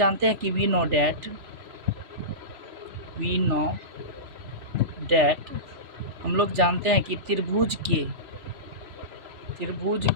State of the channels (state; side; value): late; left; 3.0 ms